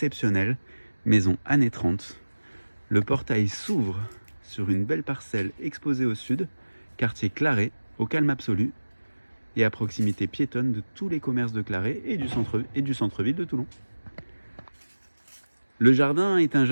maison années 30. Le portail s'ouvre sur une belle parcelle exposée au sud, quartier Claret, au calme absolu, et à proximité piétonne de tous les commerces de Claret et du centre-ville de Toulon. Le jardin est un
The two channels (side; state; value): both; inverted; correlation -1.00